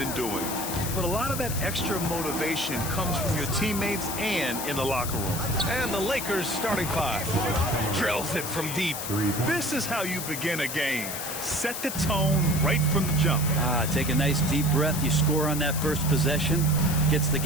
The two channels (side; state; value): left; noise; hiss, 6 dB below the sound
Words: doing. But a lot of that extra motivation comes from your teammates and in the locker room. And the Lakers starting five. Drills it from deep. This is how you begin a game. Set the tone right from the jump. Take a nice deep breath. You score on that first possession. Gets the